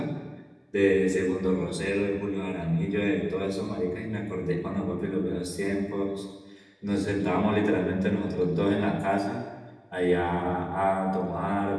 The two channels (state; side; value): identical; both; correlation 1.00